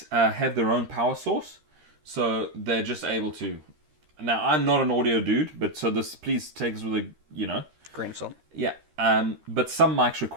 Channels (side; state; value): left; late; 13 ms